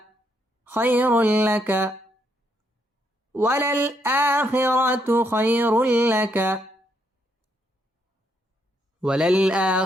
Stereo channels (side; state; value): both; normal; correlation 0.75